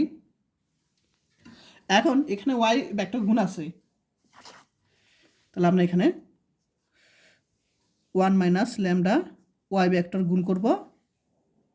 এখন এখানে ওয়াই ভেক্টর গুণ আছে, তাহলে আমরা এখানে 1 মাইনাস ল্যামডা ওয়াই ভেক্টর গুণ করব,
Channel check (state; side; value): identical; both; correlation 1.00